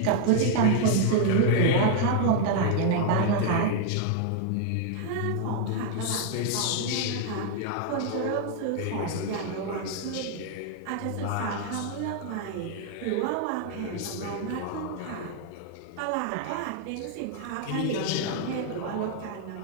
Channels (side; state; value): both; different; correlation 0.00